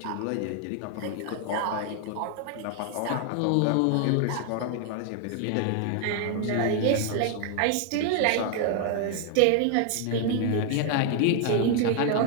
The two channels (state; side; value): different; both; correlation 0.00